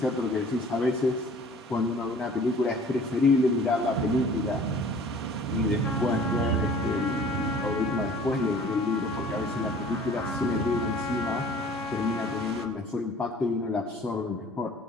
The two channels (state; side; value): normal; both; correlation 0.49